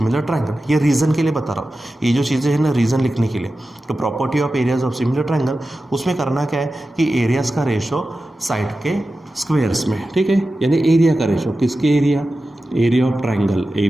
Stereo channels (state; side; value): normal; both; correlation 0.94